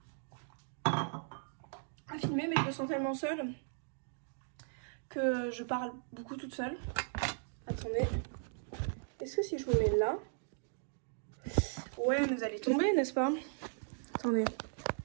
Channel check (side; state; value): left; silent; digital silence